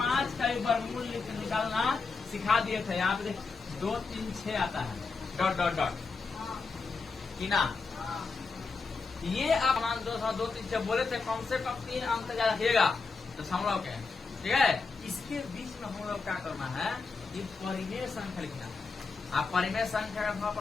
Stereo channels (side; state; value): right; quieter; 4.5 dB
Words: का वर्गमूल निकालना सिखा दिए थे। यहाँ पे 2 3 6 आता है कि ना। ये आप मान 2 3 6 बोले थे, कम से कम 3 अंक तक याद रखिएगा दशमलव के। ठीक है, इसके बीच में हम लोग क्या करना है, ये परिमेय संख्या लिखना है। आप परिमेय संख्या का